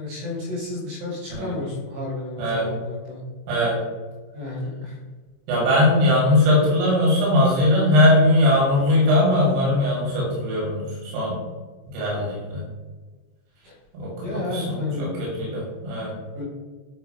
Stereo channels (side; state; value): left; late; 21 ms